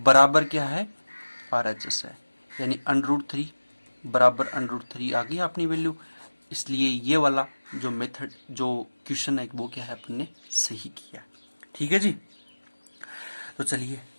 क्या है RHS है, यानी √3 बराबर √3 आ गई अपनी वैल्यू। इसलिए ये वाला जो मेथड, जो क्वेश्चन है वो क्या है अपन ने सही किया। ठीक है जी, तो चलिए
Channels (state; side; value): inverted; both; correlation -1.00